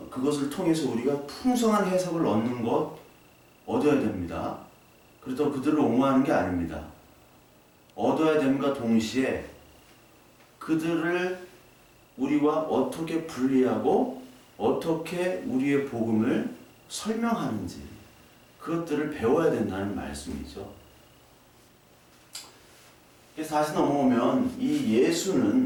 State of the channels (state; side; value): identical; both; correlation 1.00